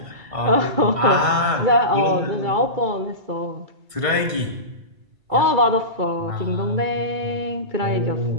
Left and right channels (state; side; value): late; left; 1.6 ms